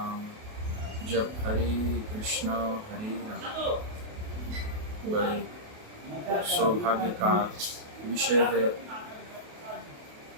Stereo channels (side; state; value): left; late; 28 ms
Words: जब हरे कृष्णा हरे राम। बड़े सौभाग्य का विषय है